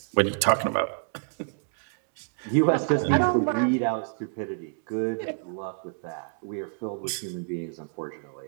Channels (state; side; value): silent; left; digital silence